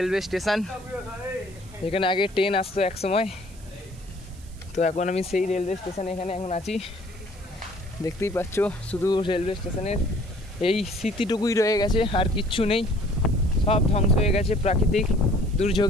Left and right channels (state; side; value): noise; right; hiss, 24 dB below the sound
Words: স্টেশন, এখানে আগে ট্রেন আসতো এক সময়। তো এখন আমি সেই রেলওয়ে স্টেশনে এখানে এখন আছি, দেখতেই পাচ্ছ। শুধু রেলওয়ে স্টেশনের এই স্মৃতিটুকুই রয়ে গেছে, আর কিচ্ছু নেই, সব ধ্বংস হয়ে গেছে প্রাকৃতিক